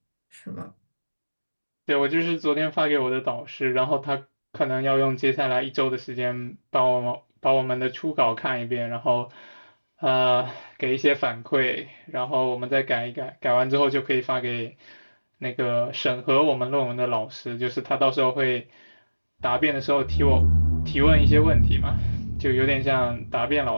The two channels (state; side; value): inverted; both; correlation -1.00